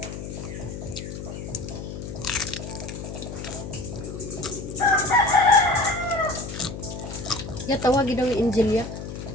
Ya, tawagin daw yung Angelia.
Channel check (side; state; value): left; noise; hum, 8 dB below the sound